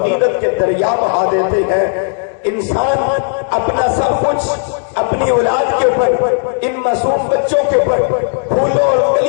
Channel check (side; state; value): right; silent; 70 dB below the other